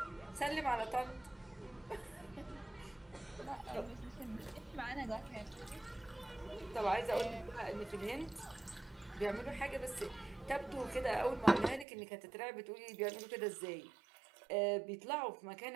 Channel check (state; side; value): drops out; left; at 11.9 s